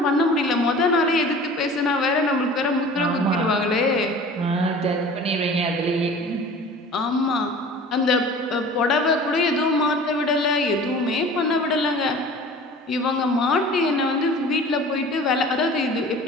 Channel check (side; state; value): both; normal; correlation 0.42